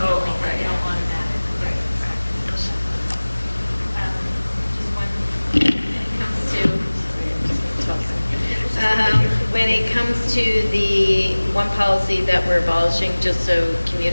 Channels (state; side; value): inverted; both; correlation -1.00